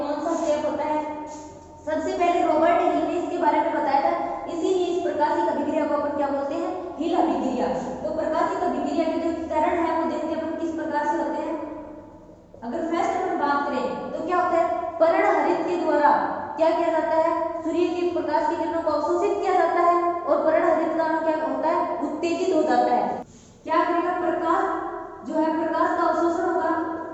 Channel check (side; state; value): both; identical; correlation 1.00